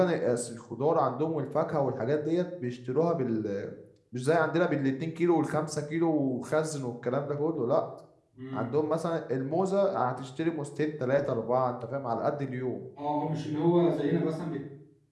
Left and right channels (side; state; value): both; identical; correlation 1.00